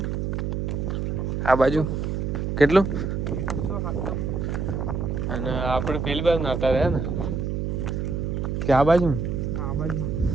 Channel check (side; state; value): right; noise; hum, 1 dB below the sound